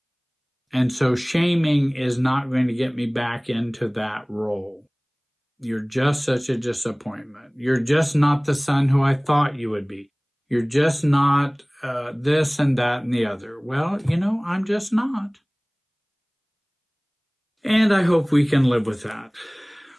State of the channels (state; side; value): identical; both; correlation 1.00